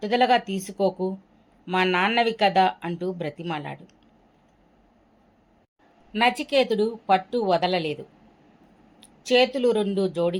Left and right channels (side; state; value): both; identical; correlation 1.00